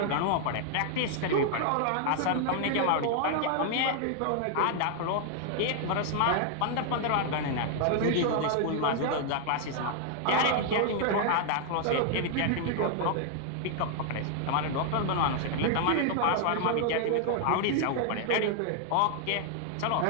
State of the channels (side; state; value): both; different; correlation 0.00